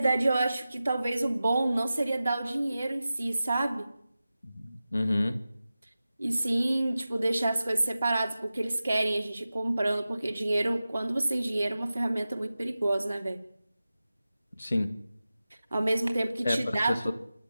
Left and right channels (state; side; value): inverted; both; correlation -0.95